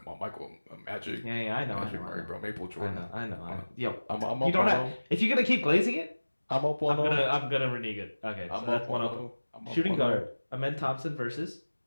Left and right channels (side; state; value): both; inverted; correlation -1.00